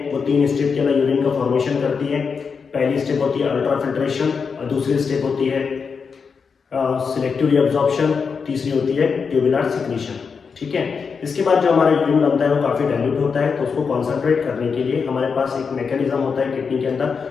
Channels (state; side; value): quieter; right; 5.6 dB